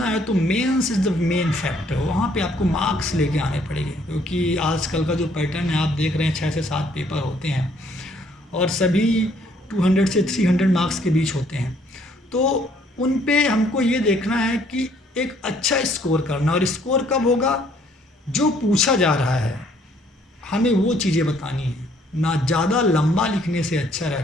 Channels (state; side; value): normal; both; correlation 0.64